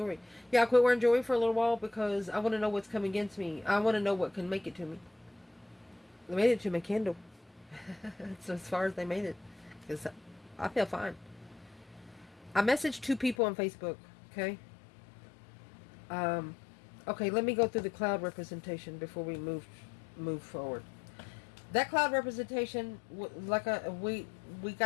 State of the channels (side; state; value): right; drops out; at 13.4 s